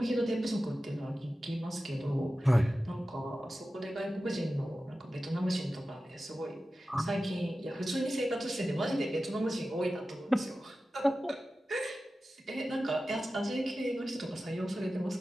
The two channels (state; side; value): normal; both; correlation 0.94